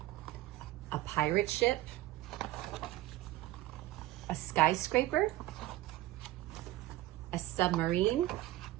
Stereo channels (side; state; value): left; quieter; 16.0 dB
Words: a pirate ship, a skyscraper, a submarine,